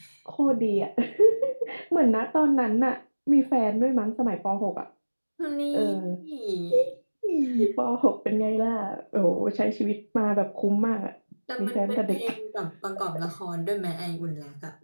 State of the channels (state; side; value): inverted; both; correlation -1.00